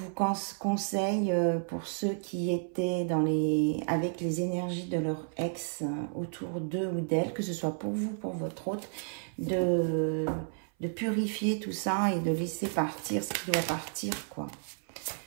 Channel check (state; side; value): silent; left; 57 dB below the other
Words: conseille pour ceux qui étaient avec les énergies de leur ex autour d'eux ou d'elle, que ce soit pour vous, pour votre autre, de purifier tout ça et de laisser partir ce qui doit partir, quoi.